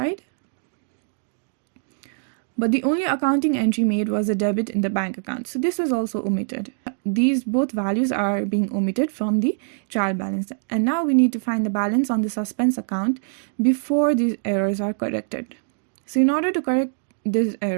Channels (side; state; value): left; silent; digital silence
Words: But the only accounting entry made was a debit in the bank account. So this was also omitted. These both values are being omitted from the trial balance. And now we need to find the balance on the suspense account before these errors are corrected. So in order to correct this